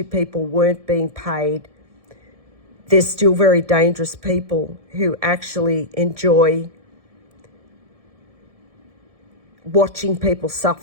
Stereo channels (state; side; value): late; left; 1.7 ms